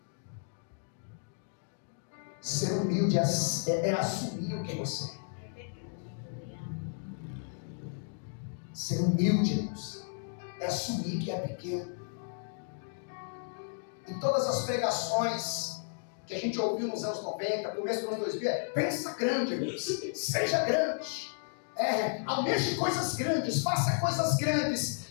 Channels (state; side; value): silent; right; digital silence